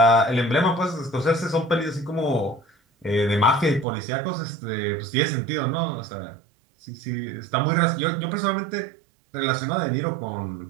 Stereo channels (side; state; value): left; drops out; at 3.9 s